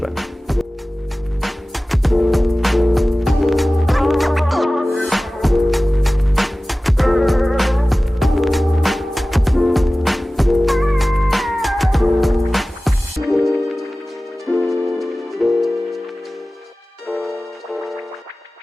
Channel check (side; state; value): both; normal; correlation 0.97